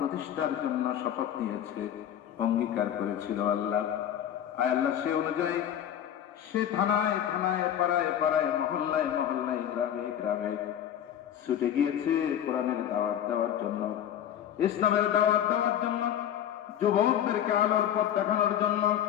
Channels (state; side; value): quieter; right; 10.4 dB